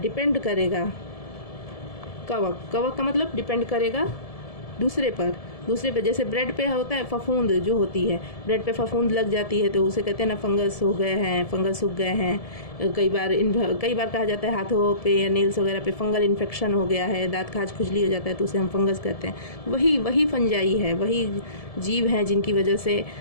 करेगा। कवक का मतलब डिपेंड करेगा दूसरे पर। जैसे ब्रेड पे होता है फफूंद जो होती है, ब्रेड पे फफूंद लग जाती है तो उसे कहते हैं ना फंगस हो गए हैं, फंगस सूख गए हैं। कई बार कहा जाता है हाथों पे या नेल्स वगैरह पे फंगल इन्फेक्शन हो गया है, दांत खाज खुजली हो जाता है तो उसे हम फंगस कहते हैं। वही फंजाई है, वही जीव हैं जिनकी वजह से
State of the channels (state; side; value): late; right; 1.7 ms